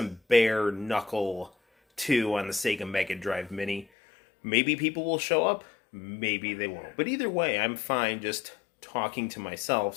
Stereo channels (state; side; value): drops out; right; at 3.9 s